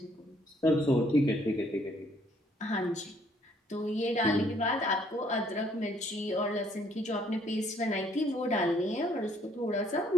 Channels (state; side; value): normal; both; correlation 0.65